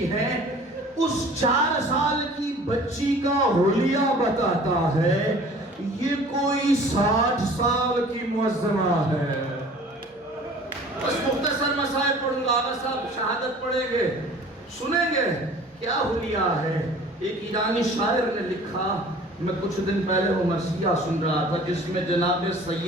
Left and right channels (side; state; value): both; normal; correlation 0.47